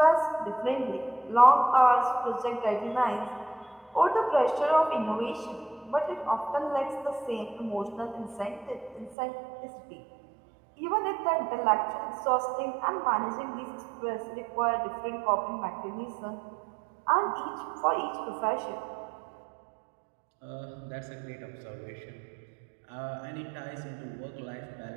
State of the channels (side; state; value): left; drops out; at 9.2 s